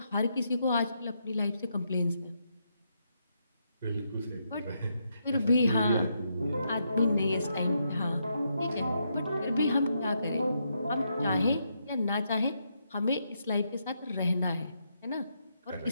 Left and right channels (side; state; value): both; inverted; correlation -0.80